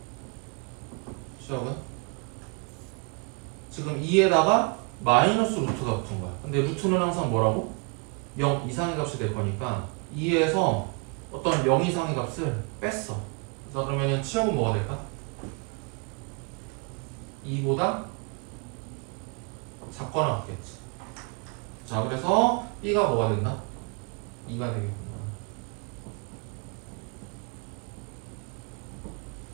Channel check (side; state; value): left; quieter; 33.1 dB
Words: 지금 2에다가 마이너스 루트가 붙은 거야. 근데 루트는 항상 뭐라고? 0 이상의 값이 될 거니까 2에서 어떤 0 이상의 값을 뺐어. 자, 그러면은 치역은 뭐가 될까? 2보다 작거나 같겠지. 자, 그래서 b가 뭐가 된다? 2가 되겠구나.